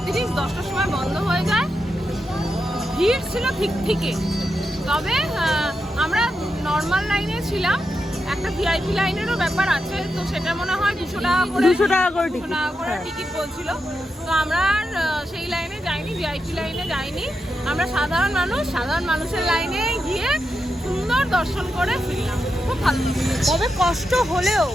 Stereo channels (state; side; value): normal; both; correlation 0.87